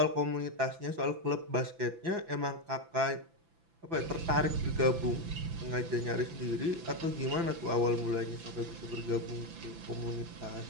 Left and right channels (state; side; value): late; left; 6.0 ms